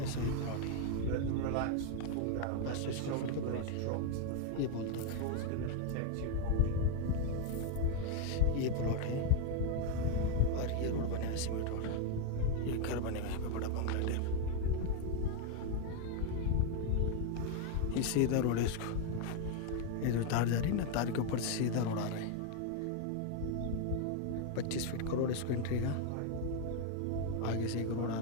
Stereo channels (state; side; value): different; both; correlation 0.01